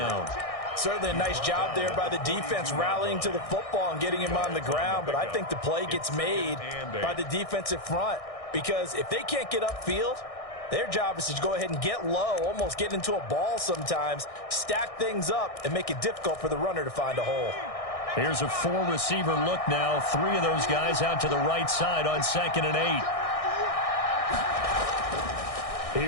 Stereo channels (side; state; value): right; late; 1.6 ms